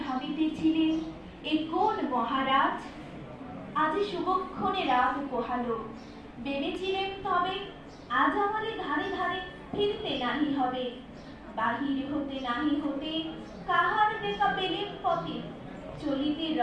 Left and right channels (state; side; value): identical; both; correlation 1.00